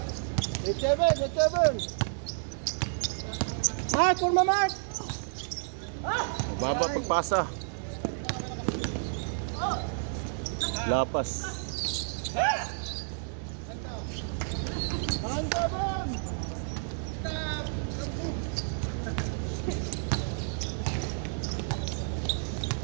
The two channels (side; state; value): left; silent; 56 dB below the other